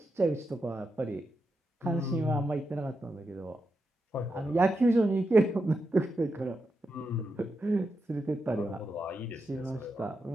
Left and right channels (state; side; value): normal; both; correlation 0.86